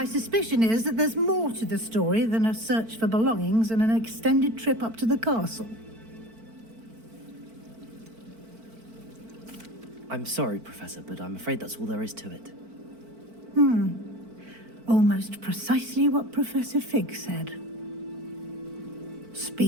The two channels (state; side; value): late; left; 4.5 ms